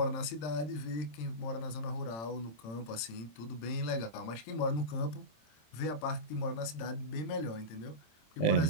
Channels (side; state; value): right; late; 26 ms